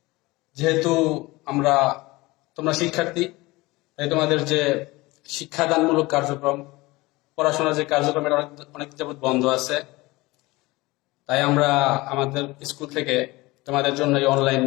যেহেতু তোমরা শিক্ষার্থী, তাই তোমাদের যে শিক্ষাদানমূলক কার্যক্রম, পড়াশোনার যে কার্যক্রম, এটা অনেক যাবৎ বন্ধ আছে। তাই আমরা আমাদের স্কুল থেকে তোমাদের জন্য এই অনলাইন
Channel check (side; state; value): right; quieter; 21.4 dB